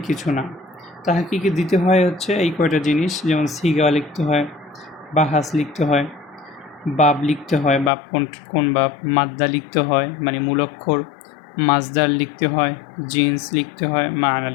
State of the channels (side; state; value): right; drops out; at 7.9 s